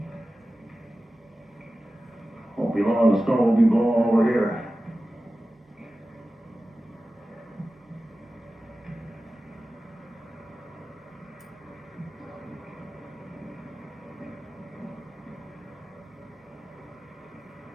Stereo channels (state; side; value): normal; both; correlation 0.95